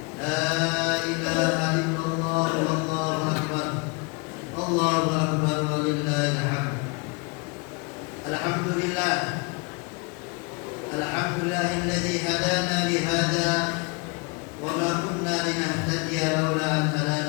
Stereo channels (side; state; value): right; quieter; 29.8 dB